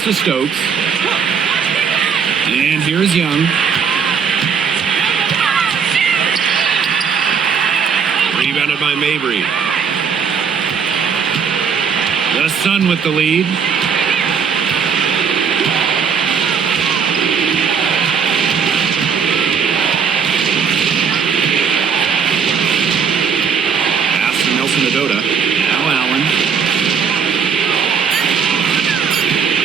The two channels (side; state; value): left; quieter; 6.5 dB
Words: to Stokes. And here's Young. Rebounded by Mabry. The Sun with the lead. Pass to Nelson Adota. Now Allen.